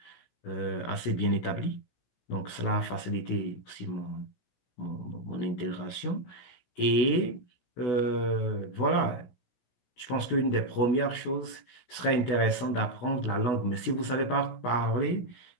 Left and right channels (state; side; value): late; right; 16 ms